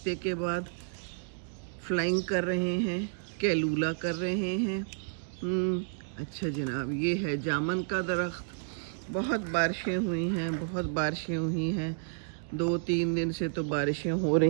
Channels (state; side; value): silent; left; digital silence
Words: के बाद फ्लाइंग कर रहे हैं, कैलूला कर रहे हैं। अच्छा जनाब, ये है जामन का दरख्त। बहुत बारिशें हुई हैं, बहुत बारिशें हुई हैं। 2-3 दिन से तो बारिशें हो